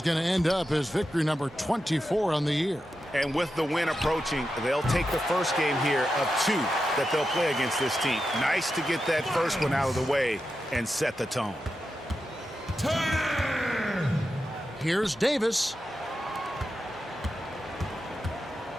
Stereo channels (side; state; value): both; normal; correlation 0.89